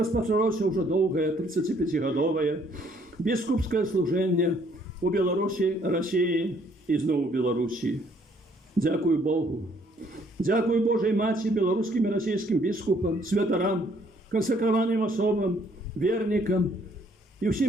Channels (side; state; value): both; normal; correlation 0.64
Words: ўжо доўгае 35-гадовае біскупскае служэнне у Беларусі, Расіі і зноў у Беларусі. Дзякуй Богу. Дзякуй Божай Маці, беларускім і расійскім біскупам, святарам, кансакраваным асобам, вернікам і